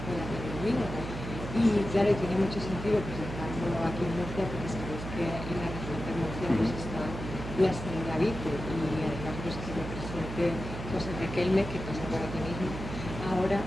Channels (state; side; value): noise; right; hum, 7 dB below the sound